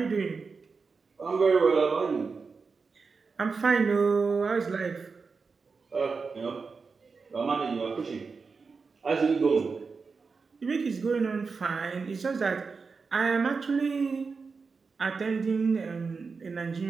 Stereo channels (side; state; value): left; quieter; 4.8 dB